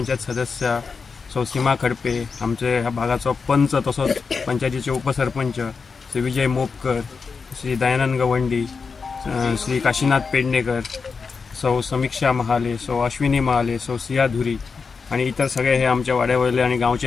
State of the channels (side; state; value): right; quieter; 5.1 dB